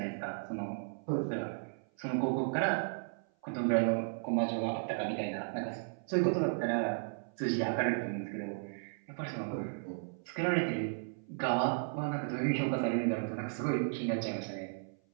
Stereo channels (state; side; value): silent; left; 55 dB below the other